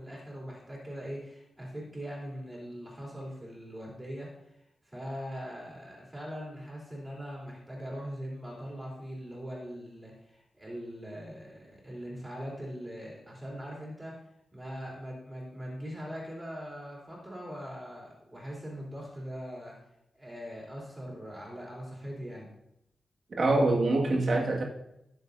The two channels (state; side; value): normal; both; correlation 0.92